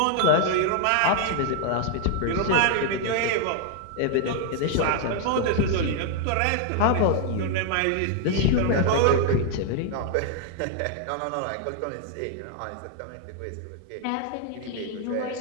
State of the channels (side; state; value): both; different; correlation 0.00